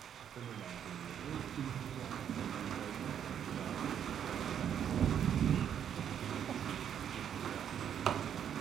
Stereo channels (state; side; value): quieter; left; 9.0 dB